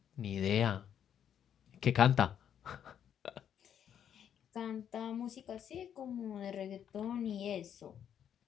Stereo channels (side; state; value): right; quieter; 9.1 dB